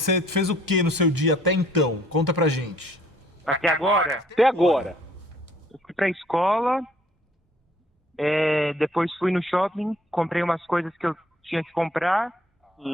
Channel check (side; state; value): both; normal; correlation 0.61